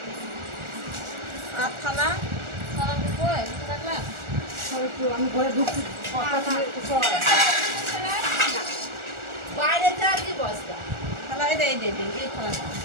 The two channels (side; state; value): left; late; 1.4 ms